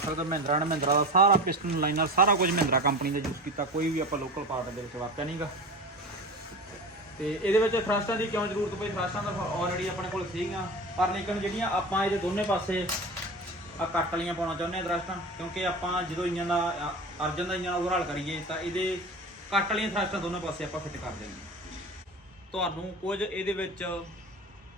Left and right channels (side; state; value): both; normal; correlation 0.31